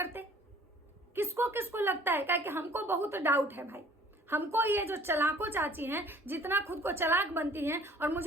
किसको किसको लगता है? क्या कि हमको बहुत डाउट है भाई। हमको ये जो चलाको चाची हैं, जितना खुद को चलाक बनती हैं, और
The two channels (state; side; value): normal; both; correlation 0.53